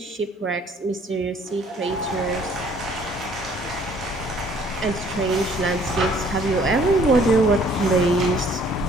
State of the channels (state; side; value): normal; both; correlation 0.59